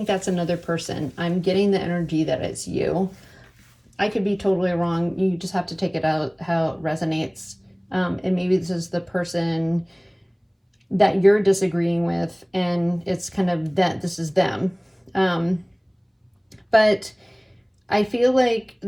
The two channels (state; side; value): identical; both; correlation 1.00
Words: that's another person. I'm getting the energy that it's you. I could be totally wrong. You just have to take it out how it resonates. And maybe this is the person that you're disagreeing with, and it's kind of that this is them. But I feel like